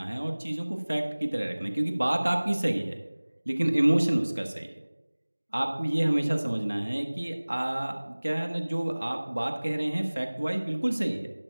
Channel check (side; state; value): both; inverted; correlation -1.00